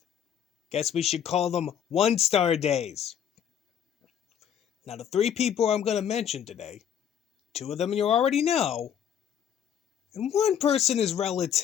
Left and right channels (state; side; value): quieter; right; 9.0 dB